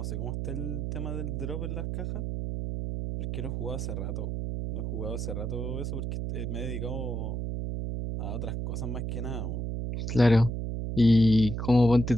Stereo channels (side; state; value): right; noise; hum, 3 dB below the sound